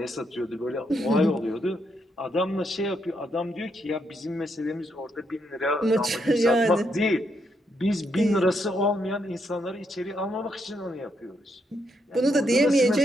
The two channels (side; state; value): both; normal; correlation 0.78